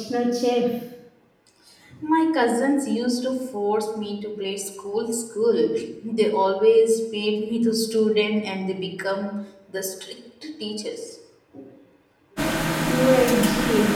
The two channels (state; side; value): identical; both; correlation 1.00